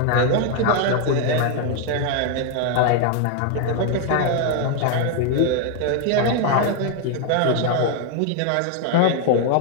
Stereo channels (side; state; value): both; different; correlation 0.00